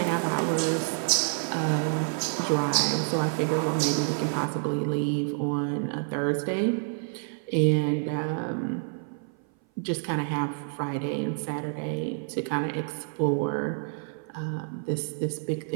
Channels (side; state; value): left; silent; 56 dB below the other